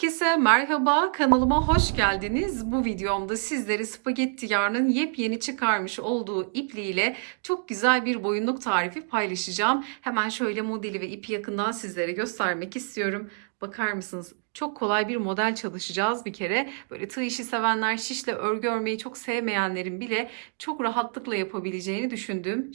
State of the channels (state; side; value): silent; left; 57 dB below the other